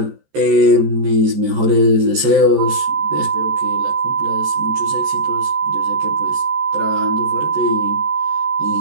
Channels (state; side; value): late; left; 14 ms